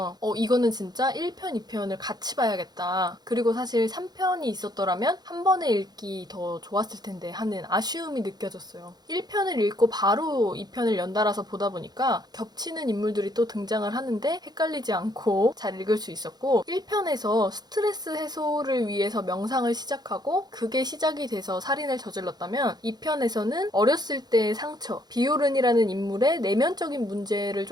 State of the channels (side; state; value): left; late; 0.20 ms